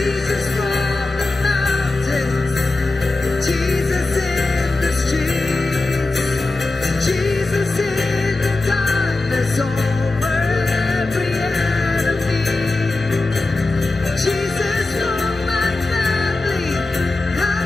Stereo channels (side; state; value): right; quieter; 3.2 dB